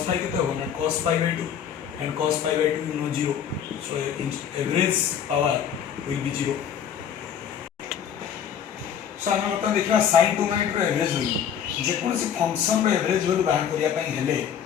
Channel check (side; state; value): right; quieter; 8.5 dB